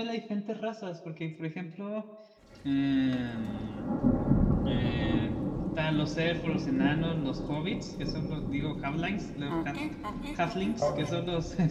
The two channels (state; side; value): identical; both; correlation 1.00